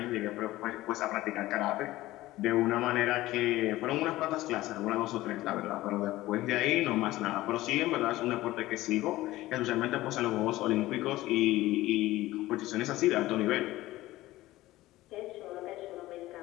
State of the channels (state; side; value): quieter; right; 17.0 dB